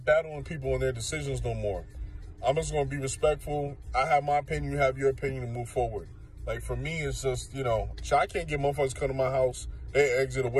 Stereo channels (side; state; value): both; identical; correlation 1.00